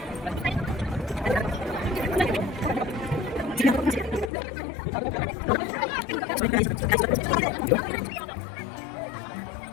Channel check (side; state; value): right; drops out; at 4.3 s